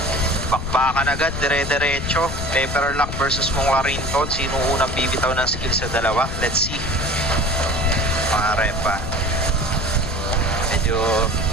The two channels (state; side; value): noise; left; rumble, 7 dB below the sound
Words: Bakbakan agad. Dire-diretso. Pepperlock versus Mokarinton. Sino unang bibitaw ng skill sa dalawa? Let's see. Mga repa. Medyo